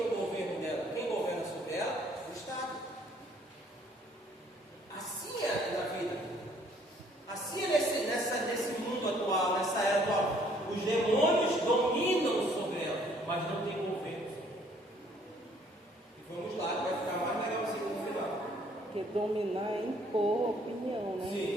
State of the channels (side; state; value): both; normal; correlation 0.62